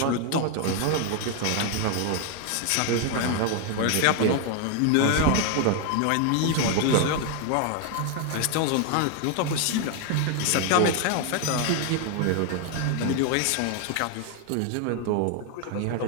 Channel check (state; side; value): different; both; correlation 0.01